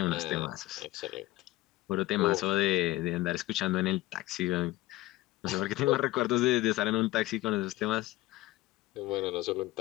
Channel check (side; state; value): right; quieter; 17.7 dB